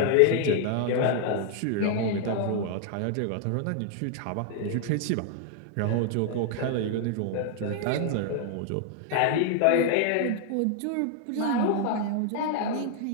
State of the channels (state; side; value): different; both; correlation 0.00